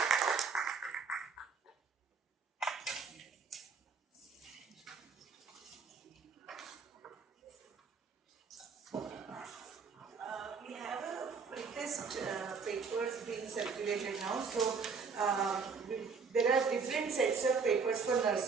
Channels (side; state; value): left; quieter; 5.2 dB